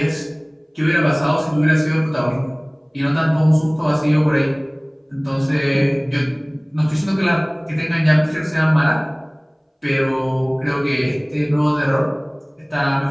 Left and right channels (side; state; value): both; identical; correlation 1.00